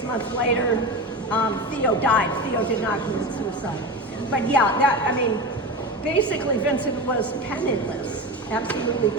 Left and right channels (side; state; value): both; normal; correlation 0.25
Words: months later, Theo died. Theo did not commit suicide. But yeah, basically Vincent was penniless, absolutely